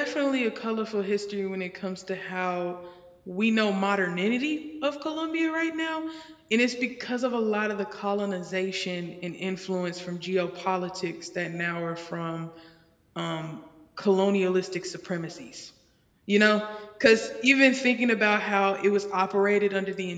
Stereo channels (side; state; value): both; identical; correlation 1.00